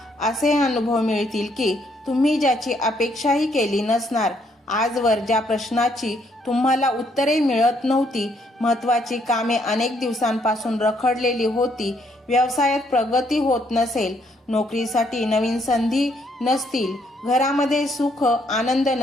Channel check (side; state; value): both; normal; correlation 0.70